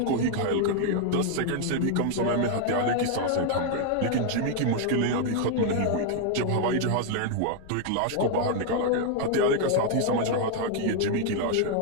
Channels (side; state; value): both; different; correlation 0.00